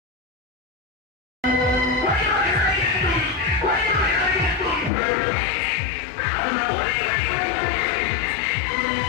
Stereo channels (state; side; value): drops out; right; at 4.9 s